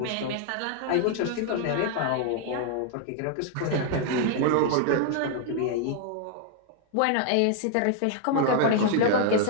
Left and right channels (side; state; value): both; different; correlation 0.00